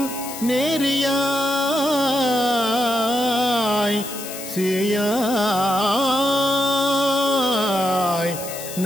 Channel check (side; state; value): left; noise; hiss, 10 dB below the sound